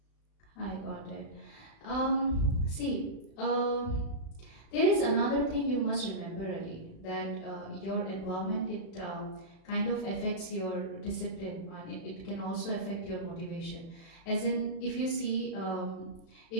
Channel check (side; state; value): right; late; 36 ms